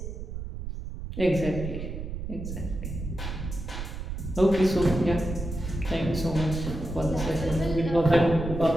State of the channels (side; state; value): right; noise; rumble, 7 dB below the sound